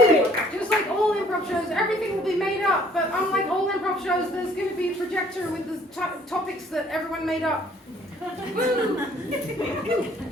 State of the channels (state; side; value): normal; both; correlation 0.59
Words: Just like all improv shows, everything will be made up. But unlike all improv shows, there's going to be a projector with the topics that everyone made up.